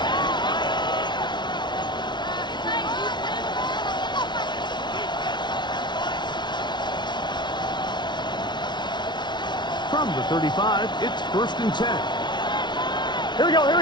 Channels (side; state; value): right; late; 0.21 ms